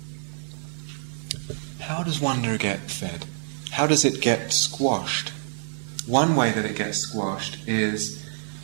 How does wonder get fed? How does it get squashed? One way that it gets squashed is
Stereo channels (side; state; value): left; silent; 58 dB below the other